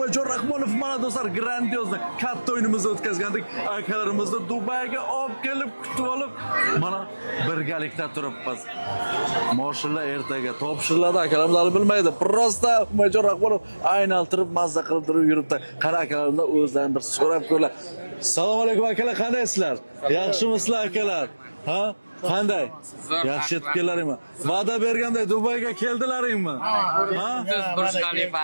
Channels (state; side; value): inverted; both; correlation -1.00